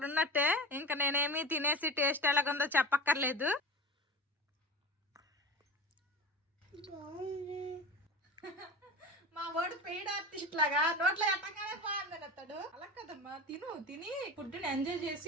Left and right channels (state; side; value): normal; both; correlation 0.29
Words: ఉన్నట్టే. ఇంకా నేనేమి తినేసి టేస్ట్ ఎలాగుందో చెప్పక్కర్లేదు. మా వాడు పెయిడ్ ఆర్టిస్ట్ లాగా నోట్లో ఎట్టగానే బాగుందని అతడు. అలా కదమ్మా, తిని ఫుడ్ ని ఎంజాయ్